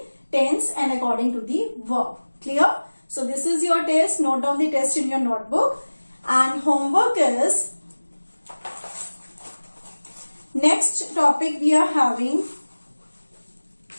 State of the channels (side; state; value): both; inverted; correlation -1.00